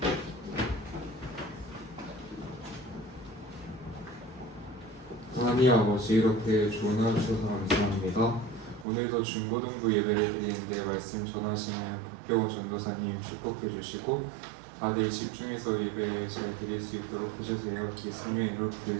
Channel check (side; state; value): left; drops out; at 8.8 s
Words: 하나님 아버지, 이렇게 좋은 하루 주셔서 감사합니다. 오늘도 중고등부 예배를 드리는데 말씀 전하시는 박경호 전도사님 축복해 주시고 다들 집중해서 예배 잘 드릴 수 있도록 해주세요. 예수님의 이름으로